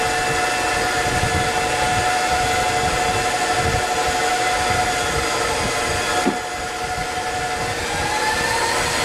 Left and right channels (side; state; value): both; identical; correlation 1.00